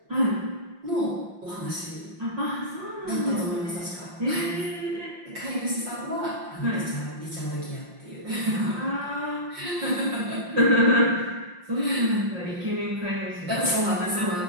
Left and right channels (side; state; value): left; late; 5.7 ms